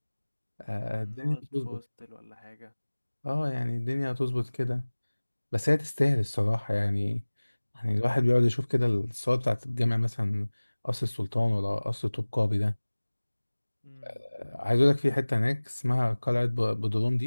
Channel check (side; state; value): both; inverted; correlation -1.00